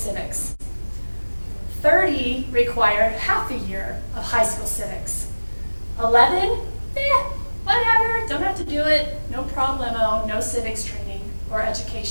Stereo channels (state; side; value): inverted; both; correlation -1.00